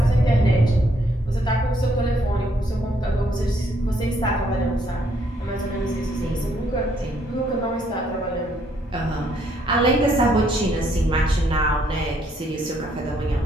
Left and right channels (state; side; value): normal; both; correlation 0.69